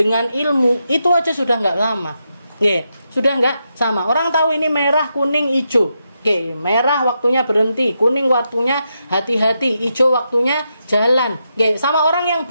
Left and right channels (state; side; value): inverted; both; correlation -0.84